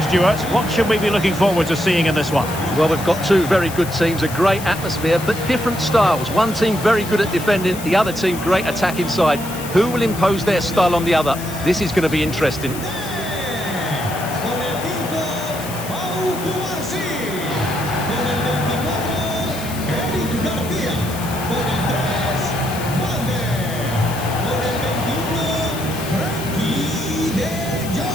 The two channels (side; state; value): left; noise; hiss, 12 dB below the sound